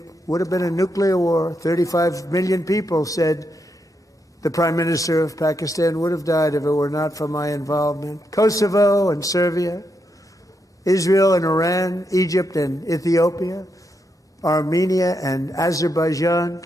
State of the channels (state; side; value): normal; both; correlation 0.82